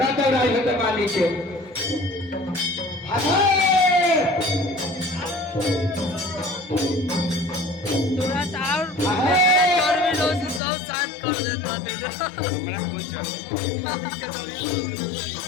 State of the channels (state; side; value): drops out; right; at 10.6 s